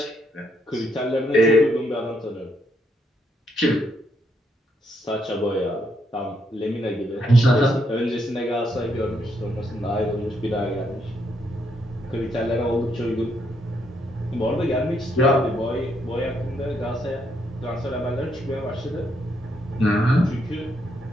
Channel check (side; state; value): both; normal; correlation 0.75